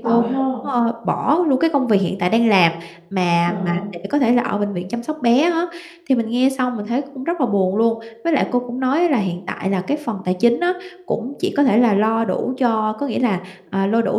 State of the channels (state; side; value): identical; both; correlation 1.00